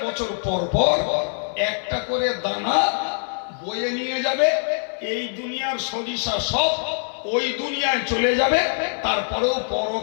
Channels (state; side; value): silent; right; 63 dB below the other